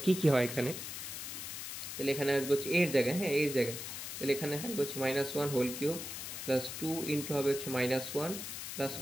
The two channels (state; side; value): noise; left; hiss, 7 dB below the sound